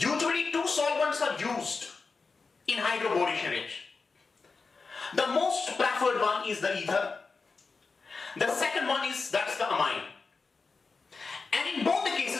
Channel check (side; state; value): right; quieter; 4.4 dB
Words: two solvents are used in hydroboration reaction. The most preferred one is the ether. The second one is that's the amine. And in both the